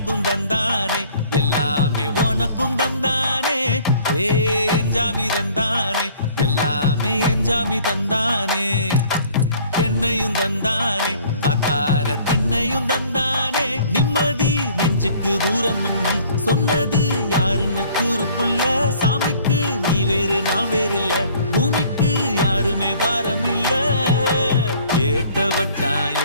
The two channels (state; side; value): inverted; both; correlation -0.55